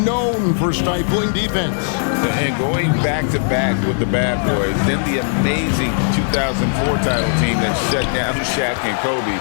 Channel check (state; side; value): silent; right; digital silence